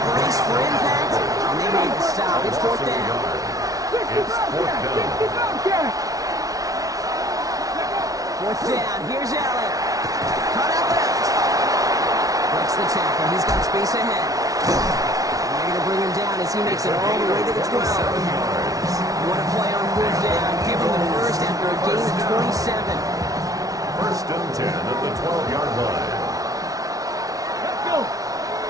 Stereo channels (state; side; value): late; left; 0.18 ms